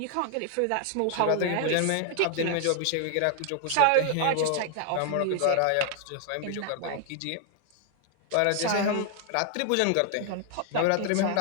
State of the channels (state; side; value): different; both; correlation 0.00